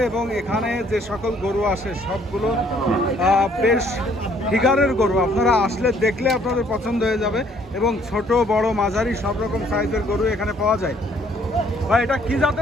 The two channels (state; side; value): normal; both; correlation 0.63